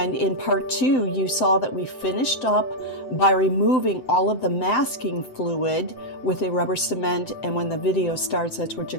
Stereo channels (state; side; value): late; right; 7.8 ms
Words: in part 2, you saw that we finished up by removing all of the masking fluid with a rubber cement. And when the video starts, that's what you're